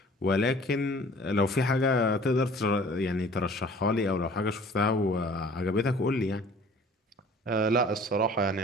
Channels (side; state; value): both; normal; correlation 0.50